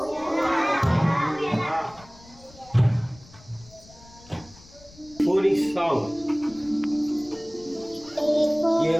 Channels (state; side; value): noise; left; rumble, 23 dB below the sound